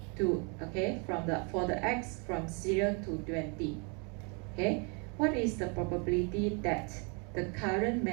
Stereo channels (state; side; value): quieter; left; 35.0 dB